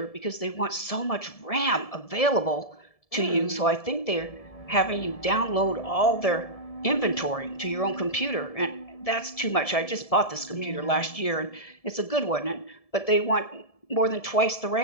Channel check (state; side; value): late; right; 1.7 ms